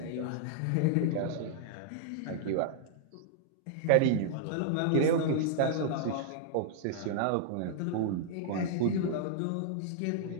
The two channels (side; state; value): both; different; correlation -0.01